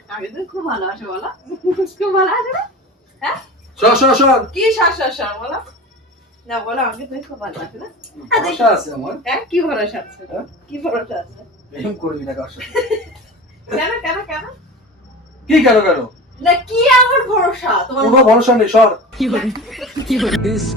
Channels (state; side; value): normal; both; correlation 0.33